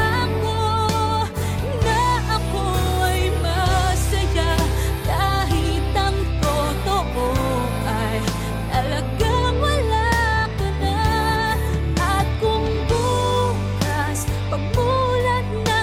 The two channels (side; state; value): both; identical; correlation 1.00